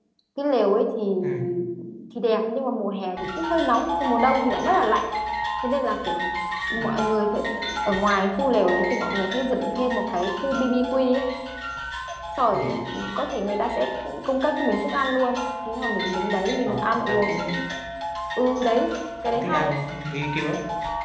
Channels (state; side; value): identical; both; correlation 1.00